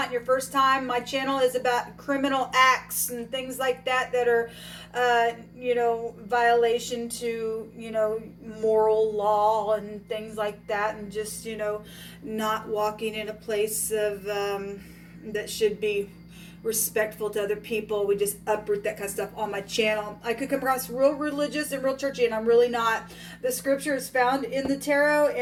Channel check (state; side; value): identical; both; correlation 1.00